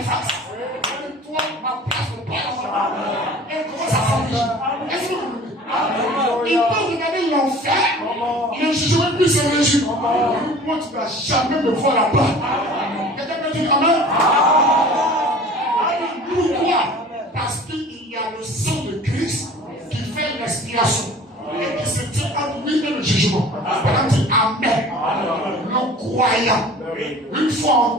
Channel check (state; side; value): normal; both; correlation 0.44